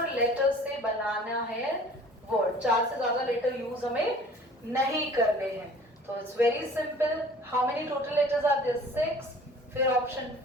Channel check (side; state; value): both; normal; correlation 0.48